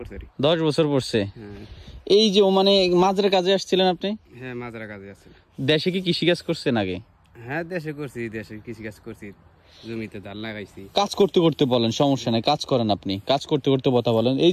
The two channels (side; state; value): both; identical; correlation 1.00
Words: 10 বছর পড়ছে। এই যে ওমানে মাজরা কাজে আসছিলেন আপনি? হ্যাঁ, মাজরা কাজে আছি। দেশে কি কৃষিকাজ করছেন আগে? হ্যাঁ, দেশে করছি, দেশে কৃষিকাজ করছি, জমিতে ধান লাগাইছি। কাজ করতে করতে বলেন, সমস্যা নাই, কাজ করেন আপনি। কাজ করতে করতে কথা বলেন। এই